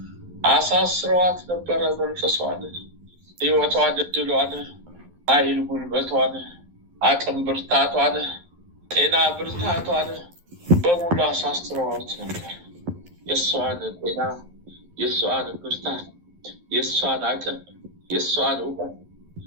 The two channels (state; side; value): late; left; 11 ms